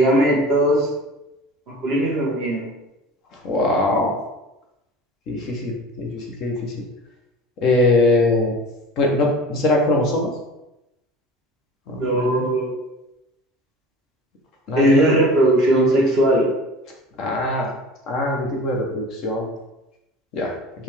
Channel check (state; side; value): normal; both; correlation 0.39